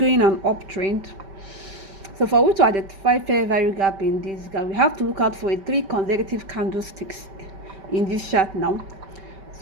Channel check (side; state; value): left; late; 5.2 ms